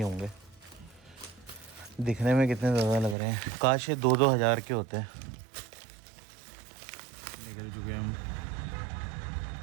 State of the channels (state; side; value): drops out; left; at 3.2 s